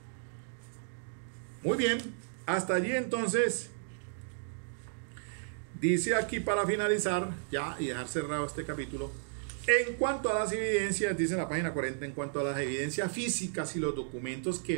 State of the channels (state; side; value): silent; left; digital silence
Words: Muy bien, hasta allí entonces. Dice aquí para finalizar ya y dejar cerrado este capítulo, en cuanto a las evidencias, dice en la página 40, en cuanto a las evidencias físicas y los documentos que